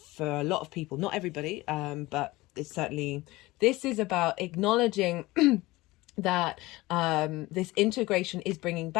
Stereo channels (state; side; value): quieter; right; 20.0 dB